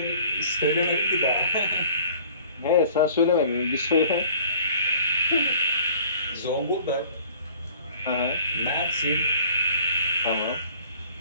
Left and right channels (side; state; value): both; inverted; correlation -0.51